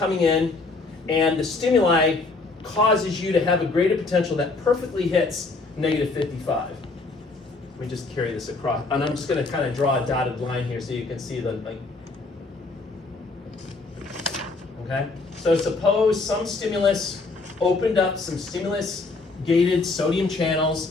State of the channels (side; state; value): right; quieter; 3.7 dB